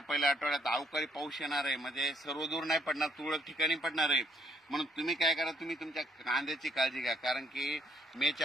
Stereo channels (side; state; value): both; normal; correlation 0.67